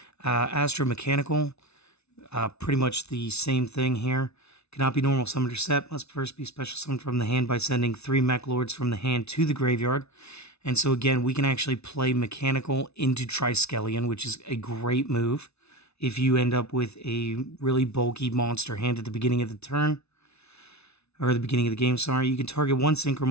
Astro Mechanical, pretty much the same thing here. Cannot be normal summoned or set. Must first be special summoned from the hand by sending 3 Meklords from the hand to the graveyard. And so again, we can actually play Mechanical into Triskelion, which is a great move if you end up with a really bulky monster hand at the beginning of the turn. Or the beginning of the game, sorry. You can target 1 Synchro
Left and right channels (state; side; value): late; right; 0.80 ms